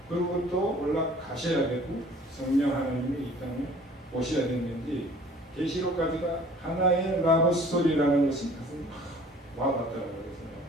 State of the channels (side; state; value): both; normal; correlation 0.50